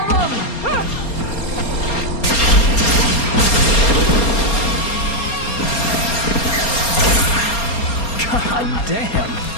them! God damn!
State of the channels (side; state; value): right; late; 4.3 ms